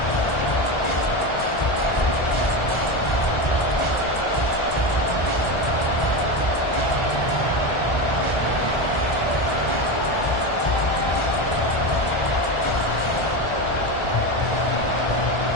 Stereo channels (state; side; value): late; right; 1.4 ms